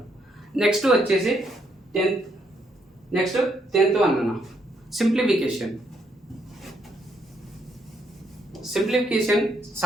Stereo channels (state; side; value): normal; both; correlation 0.74